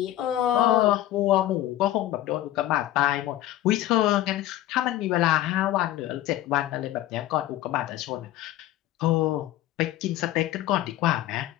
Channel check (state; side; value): quieter; right; 14.0 dB